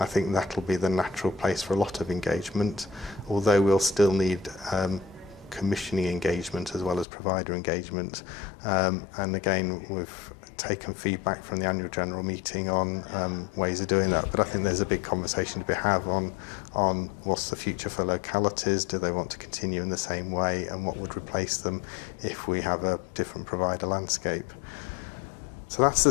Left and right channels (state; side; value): drops out; right; at 7.1 s